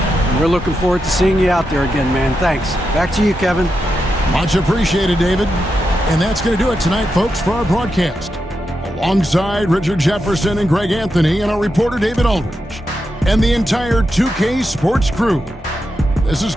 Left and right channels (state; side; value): normal; both; correlation 0.87